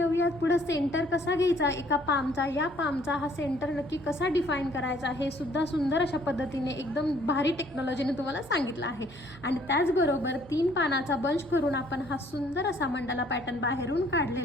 पुढे सेंटर कसा घ्यायचा एका पामचा, या पामचा हा सेंटर नक्की कसा डिफाईन करायचा हे सुद्धा सुंदर अशा पद्धतीने एकदम भारी टेक्नॉलॉजीने तुम्हाला सांगितलं आहे. आणि त्याचबरोबर 3 पानाचा बंच करून आपण हा सुंदर असा मंडाला पॅटर्न बाहेरून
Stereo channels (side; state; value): left; noise; hum, 26 dB below the sound